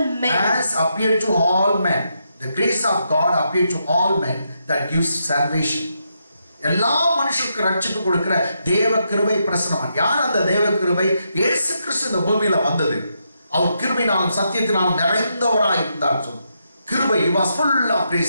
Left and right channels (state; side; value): inverted; both; correlation -0.81